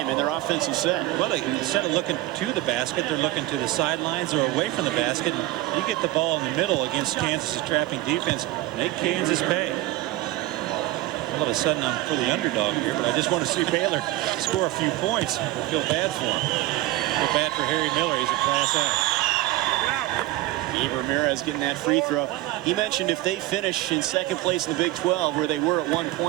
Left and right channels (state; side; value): quieter; left; 16.6 dB